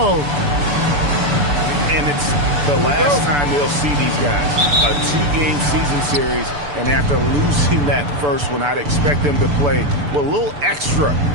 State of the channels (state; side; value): late; left; 6.9 ms